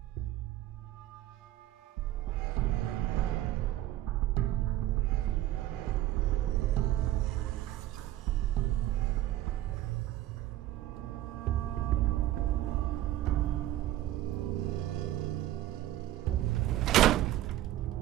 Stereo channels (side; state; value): left; quieter; 14.1 dB